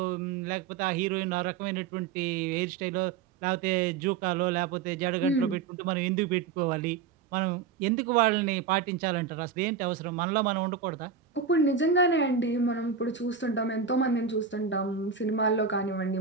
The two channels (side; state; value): left; quieter; 6.1 dB